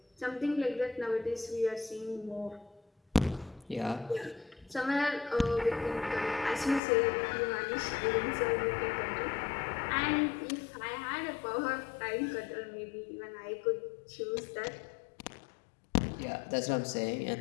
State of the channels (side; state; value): right; drops out; at 6.8 s